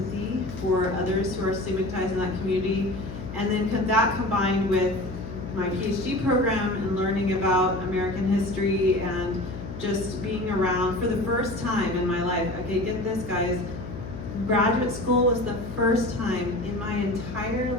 for others who are stigmatized in that community. And then that combined with my PhD program and learning about American history and just being around for the first time in my life. Okay, get this, guys. Graduate school was the first time in my entire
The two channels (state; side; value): noise; left; hum, 10 dB below the sound